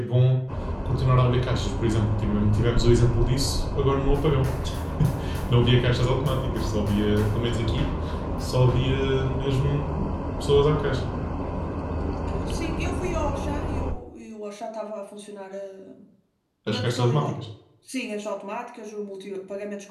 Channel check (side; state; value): both; identical; correlation 1.00